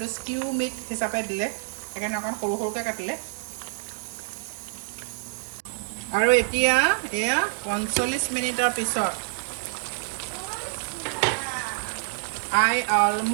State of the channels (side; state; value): left; silent; digital silence